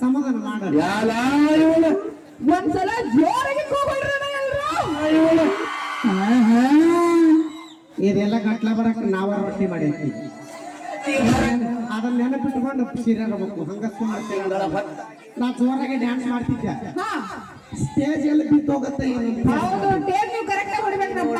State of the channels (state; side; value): identical; both; correlation 1.00